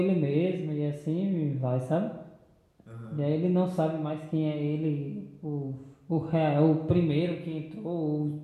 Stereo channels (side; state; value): both; identical; correlation 1.00